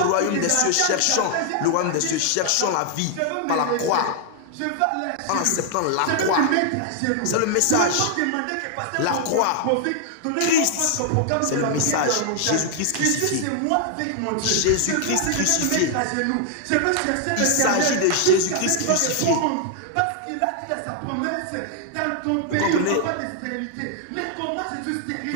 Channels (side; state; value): both; different; correlation 0.00